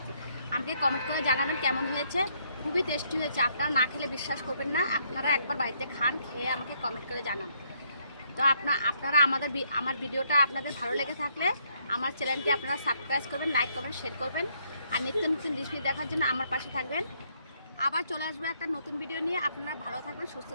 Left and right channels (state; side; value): inverted; both; correlation -0.71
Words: আমাকে কমেন্ট করে জানাবেন কেমন হয়েছে। খুবই টেস্টি হয়েছে, আপনারা না খেলে বিশ্বাস করবেন না। আপনারা একবার বাড়িতে খান, খেয়ে আমাকে কমেন্ট করে জানান। তো আপনারা আমার ভিডিওটা আপনাদের ভালো লেগে থাকলে আমার চ্যানেলটি আপনারা সাবস্ক্রাইব করবেন, লাইক করবেন, শেয়ার করবেন, আর নিত্য নতুন রেসিপি দেখার জন্য আমার পাশে থাকবেন। আবার চলে আসবো একটা নতুন ভিডিও নিয়ে। আপনারা ভালো থাকবেন, সুস্থ